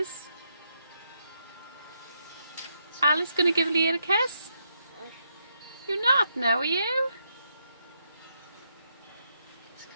Alice going to give Leah a kiss? You're not now, are you?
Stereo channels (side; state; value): both; inverted; correlation -0.80